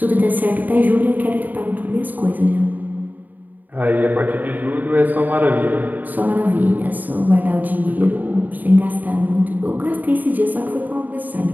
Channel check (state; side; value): late; left; 0.084 ms